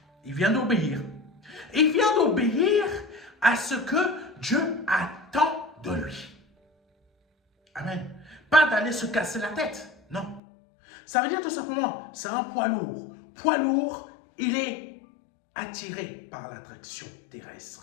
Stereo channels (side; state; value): right; drops out; at 10.4 s